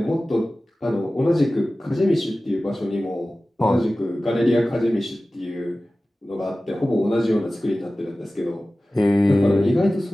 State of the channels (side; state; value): both; normal; correlation 0.96